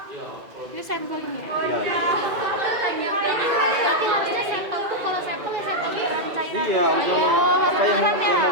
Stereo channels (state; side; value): late; left; 2.2 ms